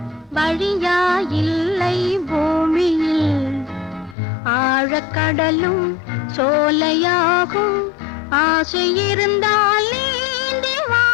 வழியா இல்லை பூமியில் ஆழக்கடலும் சோலையாகும் ஆசை இருந்தால் நீந்தி வா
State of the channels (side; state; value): right; drops out; at 4.2 s